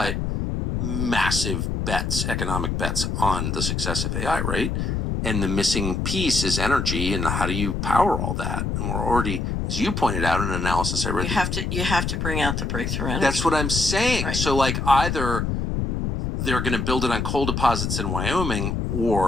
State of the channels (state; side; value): noise; left; rumble, 1 dB below the sound